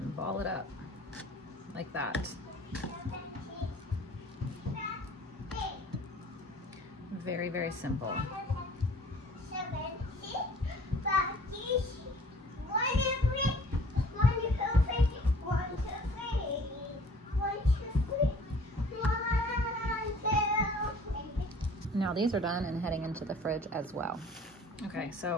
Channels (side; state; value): both; normal; correlation 0.50